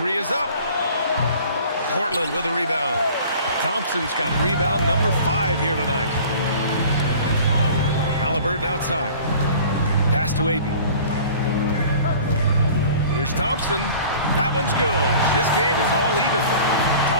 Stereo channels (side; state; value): both; inverted; correlation -0.46